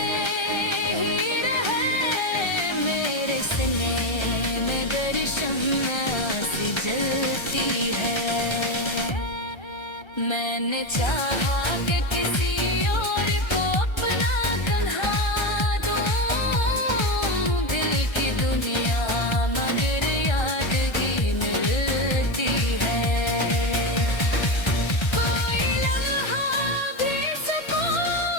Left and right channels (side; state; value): right; late; 1.3 ms